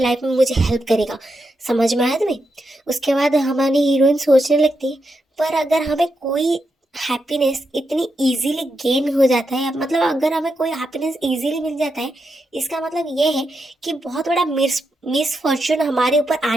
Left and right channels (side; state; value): both; normal; correlation 0.85